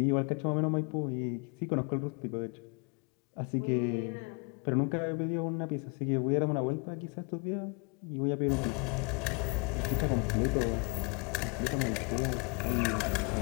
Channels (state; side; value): quieter; right; 34.2 dB